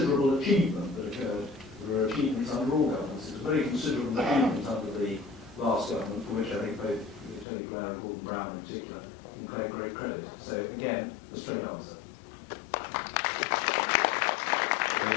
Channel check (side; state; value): right; drops out; at 7.5 s